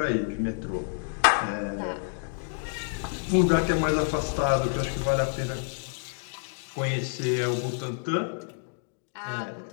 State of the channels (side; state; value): right; silent; digital silence